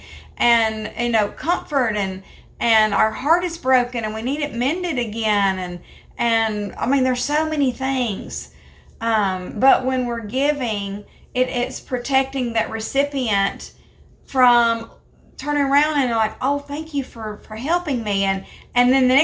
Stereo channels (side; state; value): both; identical; correlation 1.00